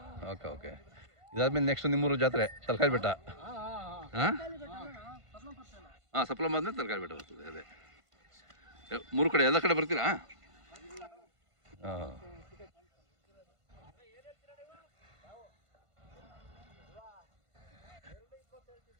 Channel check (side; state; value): left; late; 1.5 ms